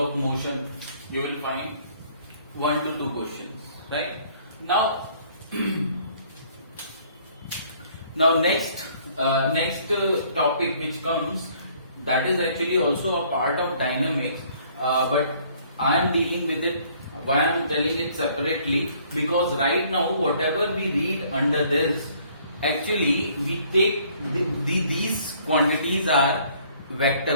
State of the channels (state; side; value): inverted; both; correlation -0.60